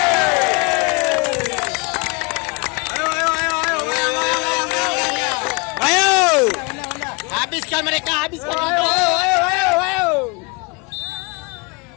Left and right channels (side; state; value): right; quieter; 29.6 dB